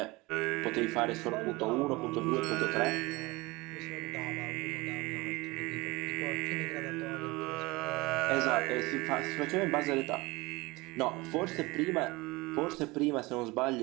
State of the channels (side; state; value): left; quieter; 22.8 dB